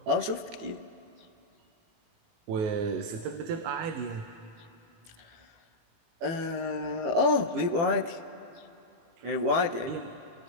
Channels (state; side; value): late; left; 18 ms